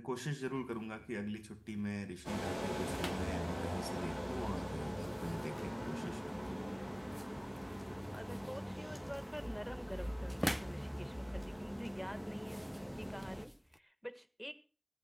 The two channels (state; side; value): identical; both; correlation 1.00